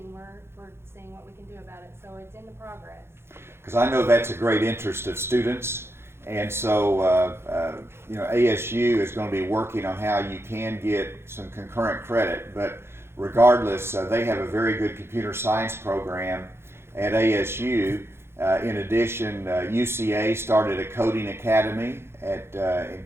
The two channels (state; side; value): late; left; 0.12 ms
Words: we're seeing what we can do about it. So it's in the progress. Because I know that's a great interest of students, and so ASU is going to be working on how you can get some concurrent credit. But regardless, they have a very good computer science program at ASU. In addition, UCA started a coding academy in